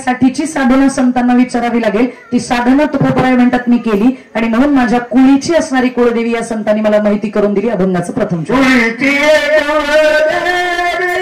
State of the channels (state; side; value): identical; both; correlation 1.00